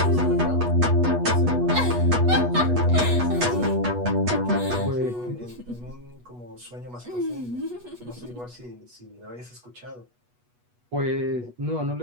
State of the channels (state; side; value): late; left; 8.2 ms